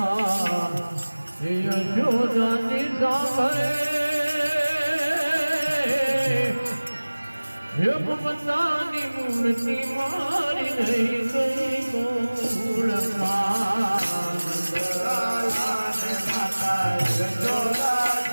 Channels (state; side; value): inverted; both; correlation -1.00